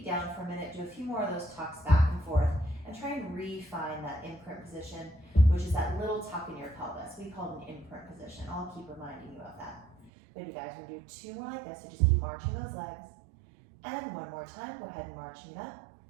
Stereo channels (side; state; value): left; drops out; at 10.1 s